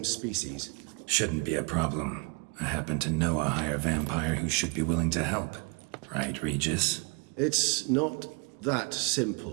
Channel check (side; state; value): left; quieter; 32.9 dB